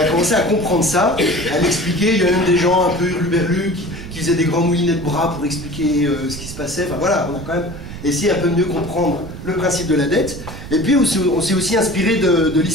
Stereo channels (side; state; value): right; noise; rumble, 11 dB below the sound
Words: a commencé à comprendre ça, à l'expliquer, il y a même des gens un peu hurluberlus qui faisaient des grands moulinets de bras pour expliquer ce qui se passait, enfin voilà, on a quand même essayé un peu mieux comprendre le principe de la dette, et puis on s'est aussi inspiré de